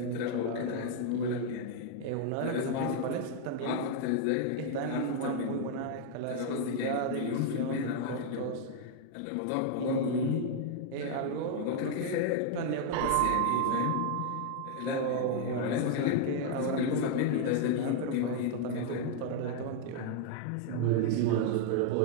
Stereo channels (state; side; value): different; both; correlation 0.00